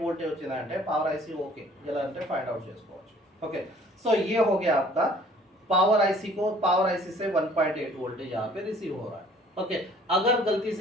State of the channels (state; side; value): normal; both; correlation 0.55